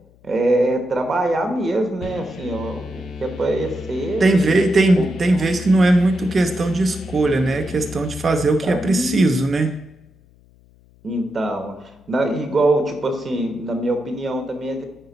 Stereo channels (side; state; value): left; noise; hum, 29 dB below the sound